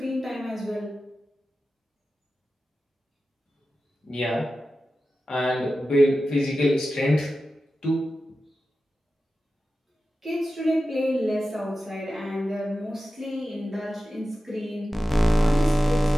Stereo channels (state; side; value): normal; both; correlation 0.93